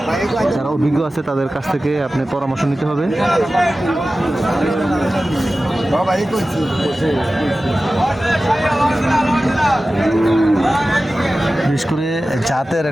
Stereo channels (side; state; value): both; normal; correlation 0.95